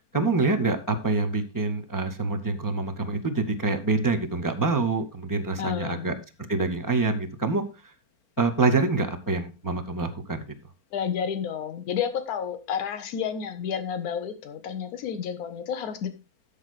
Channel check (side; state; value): right; late; 4.4 ms